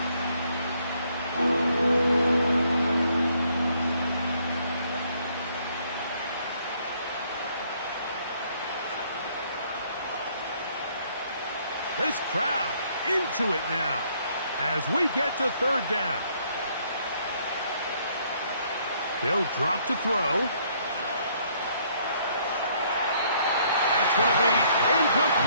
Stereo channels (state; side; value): inverted; both; correlation -0.66